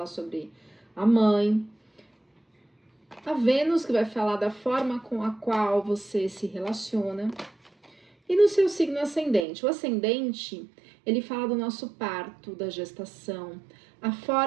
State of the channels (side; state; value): left; drops out; at 9.5 s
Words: sobre a mãe. A Vênus, que vai falar da forma com a qual você se relaciona. E no seu signo ascendente. O ascendente, ele fala do nosso parto, da gestação. A